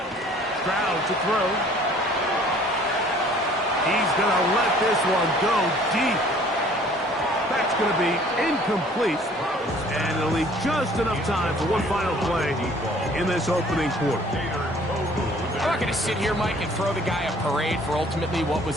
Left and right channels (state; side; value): normal; both; correlation 0.55